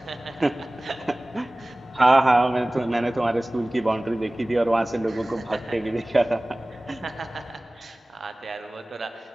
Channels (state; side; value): normal; both; correlation 0.98